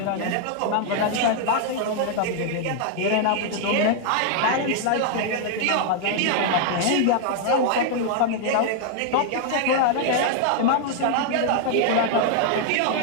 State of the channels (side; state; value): both; different; correlation 0.00